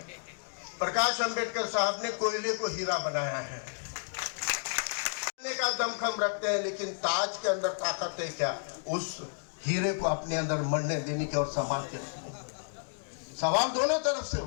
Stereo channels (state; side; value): silent; right; digital silence